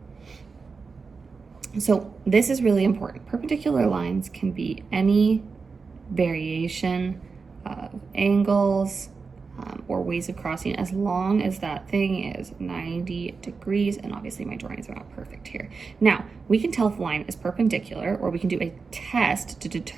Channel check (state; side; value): quieter; left; 4.8 dB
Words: So this is really important. Perpendicular lines can be any variation of angles or ways of crossing, as long as that thing is 90 degrees. And obviously my drawings are not perfect here. Now, we can tell if a line is perpendicular, or we can do a test to